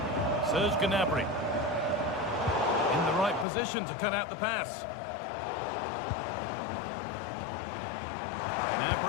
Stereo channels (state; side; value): drops out; right; at 3.5 s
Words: Serge Gnabry. In the right position to cut out the pass.